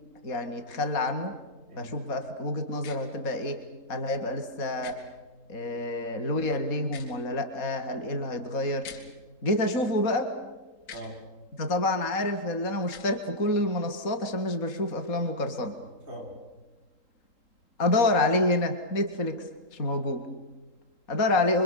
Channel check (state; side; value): late; right; 3.8 ms